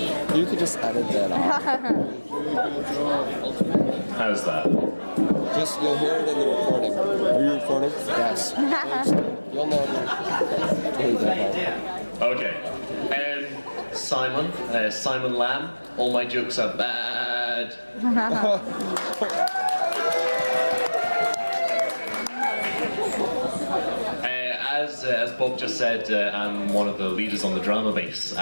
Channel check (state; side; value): inverted; both; correlation -1.00